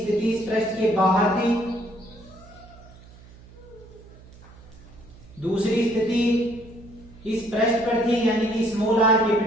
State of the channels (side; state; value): right; noise; hum, 21 dB below the sound